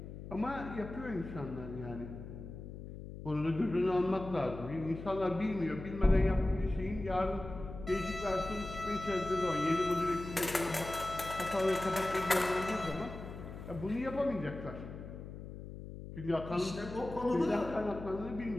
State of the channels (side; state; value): left; noise; hum, 11 dB below the sound